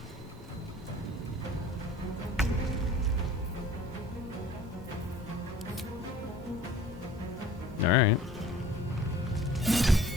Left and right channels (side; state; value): both; normal; correlation 0.48